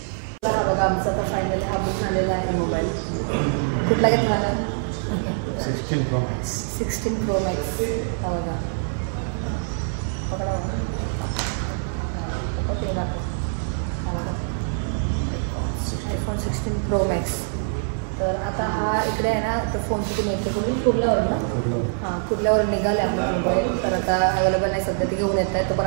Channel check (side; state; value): left; silent; 63 dB below the other